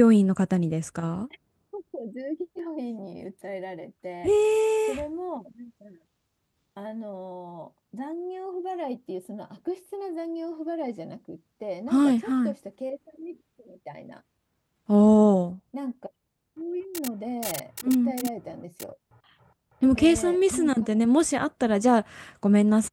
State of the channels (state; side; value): identical; both; correlation 1.00